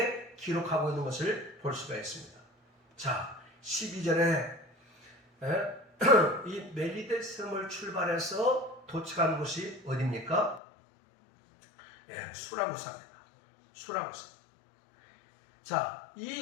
기록하고 있는 것을 볼 수가 있습니다. 자, 12절에 이 멜리데 섬을 출발해서 도착한 곳이 어디입니까? 수라구사입니다. 수라구사. 자,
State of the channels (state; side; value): drops out; right; at 10.6 s